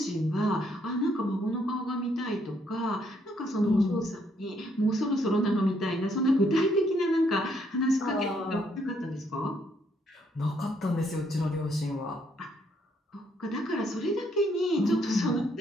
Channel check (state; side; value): normal; both; correlation 0.71